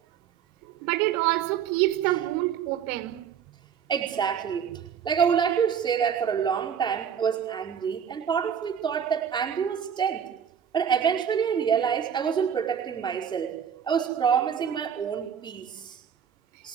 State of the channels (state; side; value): quieter; left; 8.1 dB